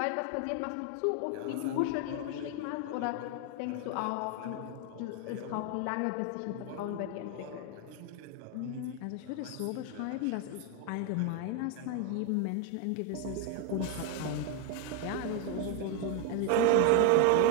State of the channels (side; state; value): both; different; correlation 0.01